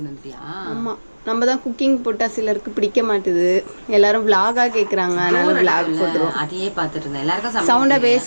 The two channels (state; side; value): inverted; both; correlation -1.00